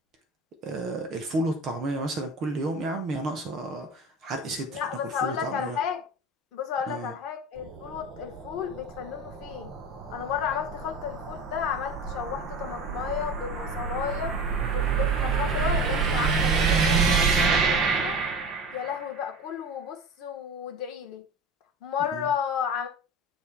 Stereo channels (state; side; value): normal; both; correlation 0.31